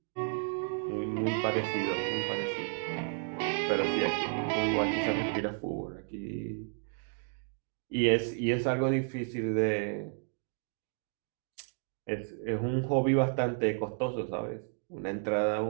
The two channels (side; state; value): left; silent; 56 dB below the other